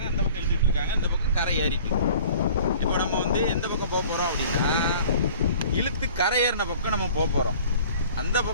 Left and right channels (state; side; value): inverted; both; correlation -0.48